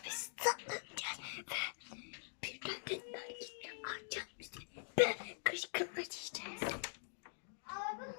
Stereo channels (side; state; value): right; silent; digital silence